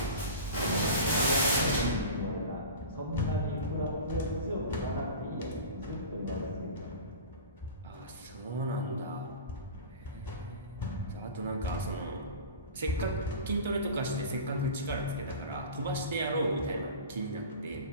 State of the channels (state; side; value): inverted; both; correlation -0.34